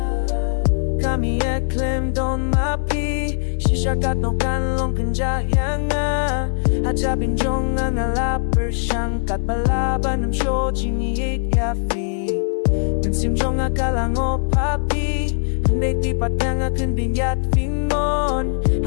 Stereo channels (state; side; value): silent; right; 65 dB below the other